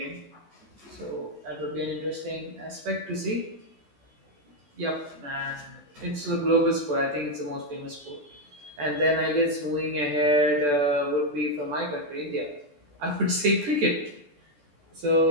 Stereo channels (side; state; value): left; late; 14 ms